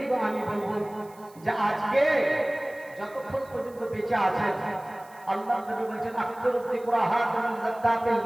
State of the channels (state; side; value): noise; right; hiss, 26 dB below the sound